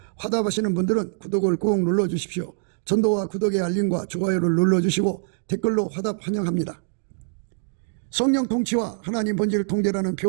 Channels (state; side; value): silent; left; digital silence